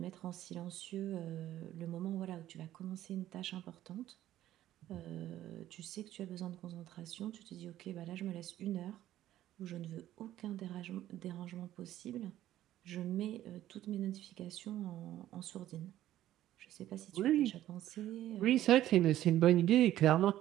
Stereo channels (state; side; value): quieter; left; 13.3 dB